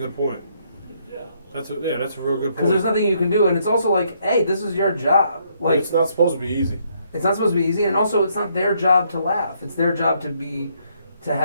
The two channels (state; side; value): inverted; both; correlation -0.71